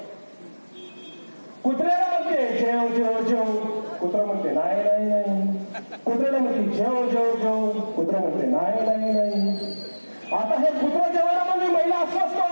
कुत्र्याला म्हणते जेव जेव जेव, कुत्रा म्हणते नाही नाही नाही. कुत्र्याला म्हणते जेव जेव जेव, कुत्रा म्हणते नाही नाही नाही. आता हे कुत्रा जेवणामध्ये महिला अस्वस्थ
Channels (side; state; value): both; inverted; correlation -1.00